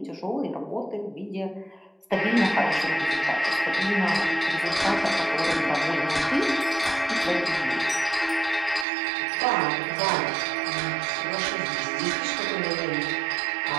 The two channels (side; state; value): left; drops out; at 8.8 s